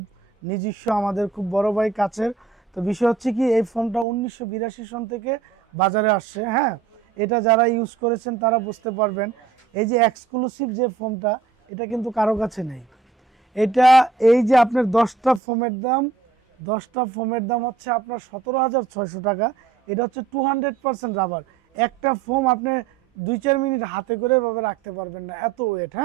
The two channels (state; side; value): quieter; left; 5.1 dB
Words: নিজস্ব, আমাদের খুব বড় ভাই কাছের। তো বিষয় হচ্ছে কি, এই ফোনটা 1982 সন থেকে বাজারে আসছে। হ্যাঁ, এটা যারা ইউজ করেছেন তারা বুঝতে পারবেন। এই যে এক্সক্লুসিভ যে ফোনটা, এটা কিন্তু কারো কাছে নেই। এটা এই যে আপনার 10টা ফোমের দাম হচ্ছে আপনার 17,600 টাকা। এটা হচ্ছে 200% রাবার। একটা ফোম আপনি 2-4 মিনিট হাতে করে এভাবে রাখতে পারবেন না, এত ওয়েট।